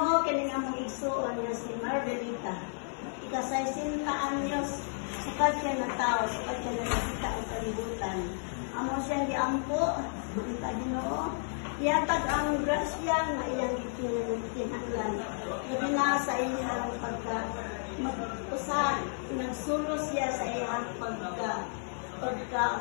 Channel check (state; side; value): silent; right; 56 dB below the other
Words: kining among igsuon nga si Margarita. Ika-60 anyos, sukat siya na tao, sukat siya na nakita ang kalibutan. Amo siya giampo, kita Ginoo. Iatag ang grasya nga iyang itinahanglan. Labi na sa iyang pagka-usa, nagsulos siya sa iyang